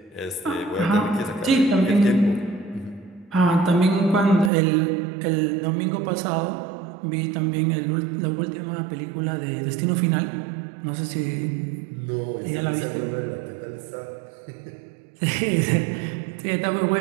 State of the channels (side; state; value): left; drops out; at 4.5 s